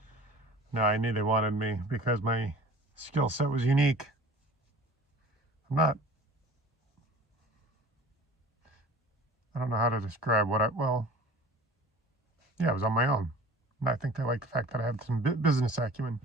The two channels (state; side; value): normal; both; correlation 0.43